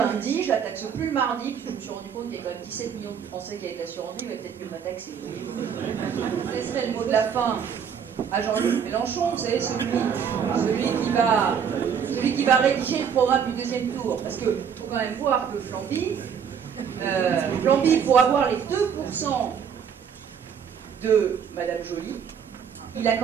je la taxe plus le mardi, puis je me suis rendu compte qu'il y a quand même 17 millions de Français qui avaient l'assurance vie, mais peut-être mieux ma taxe. Je laisserai le mot de la fin à Jean-Luc Mélenchon, vous savez, celui qui va rédiger le programme du deuxième tour, parce qu'il faut quand même voir que Flamby, pour avoir les 2% de Madame Joly, il a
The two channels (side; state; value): left; quieter; 7.5 dB